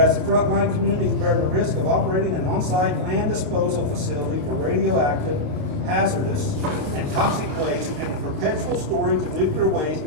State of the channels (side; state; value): left; late; 28 ms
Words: the frontline communities bear the risk of operating an on-site land disposal facility for radioactive, hazardous, and toxic waste and the perpetual storage of nuclear waste